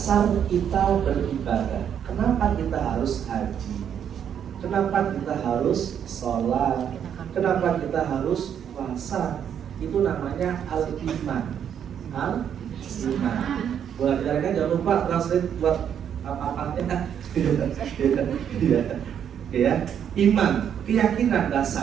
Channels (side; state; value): left; quieter; 8.8 dB